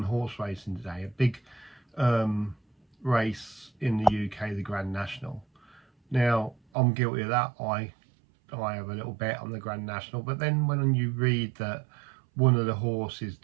horse racing today. A big um, race in the UK, the Grand National. Now, I'm guilty of that. I have a little bet on the Grand National, but then when you read that one of the horses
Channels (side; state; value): left; drops out; at 6.6 s